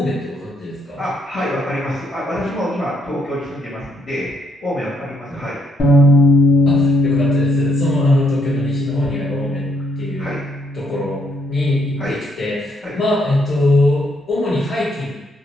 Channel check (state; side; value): normal; both; correlation 0.72